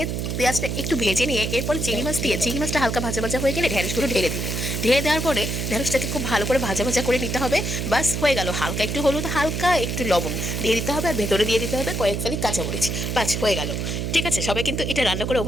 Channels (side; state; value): right; noise; hum, 2 dB below the sound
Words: পেঁয়াজটা একটু ভেজে নিয়ে এরপরে চিংড়ি মাছ দিয়ে চিংড়ি মাছটা হালকা ভাজা ভাজা হয়ে গেলে ঢেঁড়সগুলো ঢেলে দিব। ঢেলে দেওয়ার পরে ঢেঁড়সটাকে খুব ভালো করে ভাজা ভাজা করে নিতে হবে। বাস হয়ে গেল। হালকা একটু হলুদ, হালকা একটু লবণ দিয়ে দিতে হবে, আর ভেতরে দিয়ে দিতে হবে কয়েক ফালি কাঁচামরিচ। বাস হয়ে গেল। ঠিক আছে, সবাই কিন্তু এটা রান্না করে